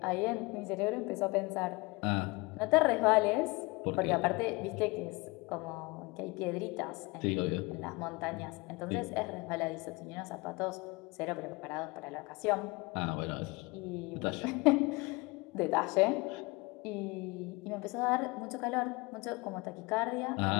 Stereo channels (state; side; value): quieter; right; 25.2 dB